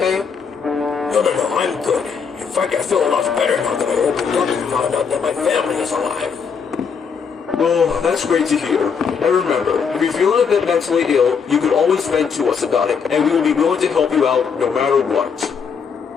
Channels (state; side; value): quieter; right; 6.2 dB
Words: No, I'm good. In fact, I feel a lot better now that I opened up and found out that my family is alive. Oh, that's great to hear. And remember, if you're feeling a bit mentally ill, you can always vent to us about it, and we will be willing to help you out no matter what.